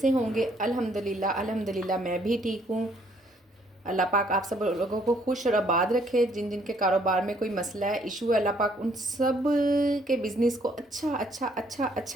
होंगे। अल्हम्दुलिल्लाह अल्हम्दुलिल्लाह मैं भी ठीक हूँ। अल्लाह पाक आप सब लोगों को खुश और आबाद रखे। जिन जिन के कारोबार में कोई मसला है, इशू है, अल्लाह पाक उन सब के बिज़नेस को अच्छा अच्छा अच्छा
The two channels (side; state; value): both; normal; correlation 0.65